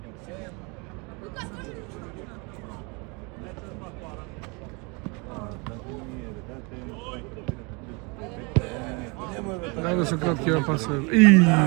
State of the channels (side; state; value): left; quieter; 30.0 dB